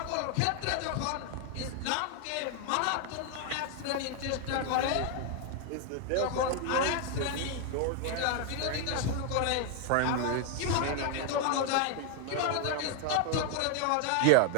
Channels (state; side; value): different; both; correlation 0.01